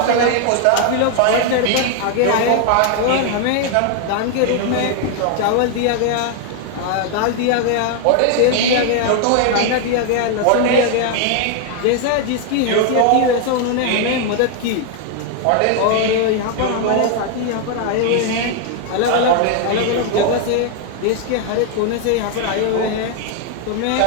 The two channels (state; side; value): different; both; correlation 0.00